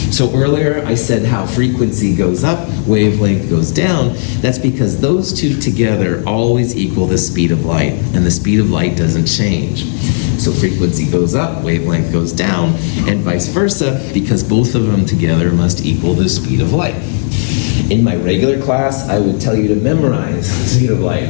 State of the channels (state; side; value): silent; right; 60 dB below the other